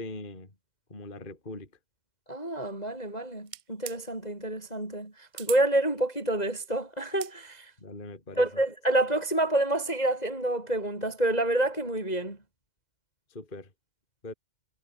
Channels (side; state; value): right; late; 2.0 ms